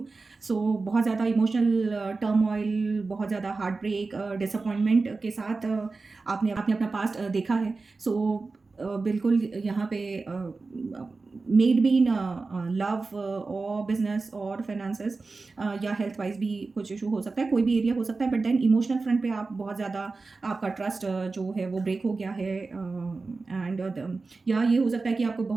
So बहुत ज़्यादा emotional turmoil, बहुत ज़्यादा heart break, disappointment के साथ आपने अपना past देखा है. सो बिल्कुल यहाँ पे मेड बी इन लव और बिजनेस और फाइनेंसेस या हेल्थ वाइज भी कुछ इशू हो सकता है, कोई भी एरिया हो सकता है. बट देन इमोशनल फ्रंट पे आप बहुत ज़्यादा आपका ट्रस्ट जो है वो ब्रेक हो गया है. एंड या ये हो सकता है कि आपको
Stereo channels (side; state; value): left; quieter; 3.9 dB